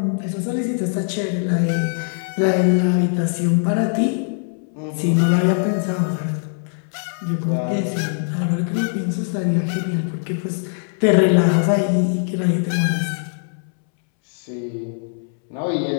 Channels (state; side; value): silent; right; 65 dB below the other